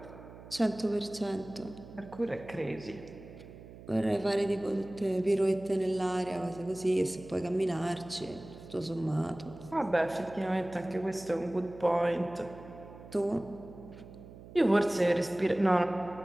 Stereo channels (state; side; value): noise; right; hum, 17 dB below the sound